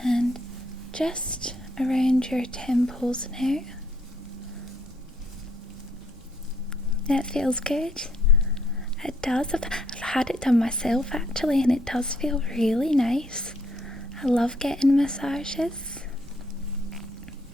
And just around your temples now. That feels good. It does. I've had it done myself actually, and it does feel really nice. I love getting massages.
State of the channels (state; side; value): normal; both; correlation 0.69